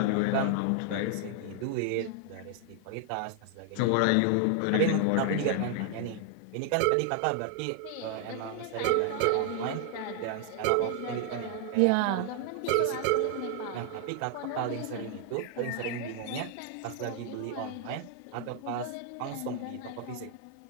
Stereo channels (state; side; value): different; both; correlation 0.00